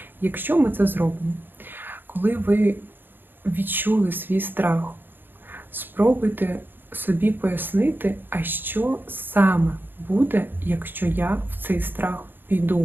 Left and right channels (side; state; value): left; late; 0.096 ms